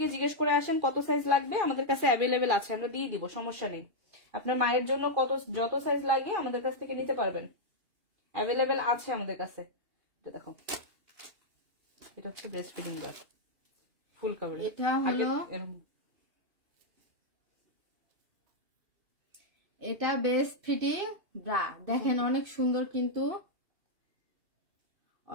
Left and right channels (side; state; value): left; late; 2.4 ms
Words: জিজ্ঞেস করে আসেন কত সাইজ লাগবে, আমাদের কাছে অ্যাভেলেবেল আছে, আমরা দিয়ে দিব, সমস্যা নেই। আপনার মায়ের জন্য যত সাইজ লাগে আমাদের কাছ থেকে নিতে পারবেন, অ্যাভেলেবেল আছে আমাদের কাছে। এটা দেখো, এটা হচ্ছে breast feeding bra, full cover. এটা হলো, এটা বেস্ট ফিটিং ব্রা, দেখেন অনেক সুন্দর, কিন্তু